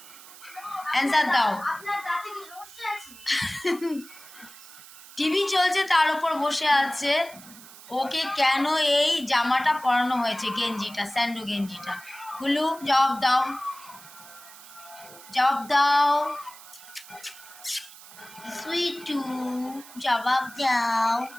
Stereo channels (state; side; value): noise; right; hiss, 19 dB below the sound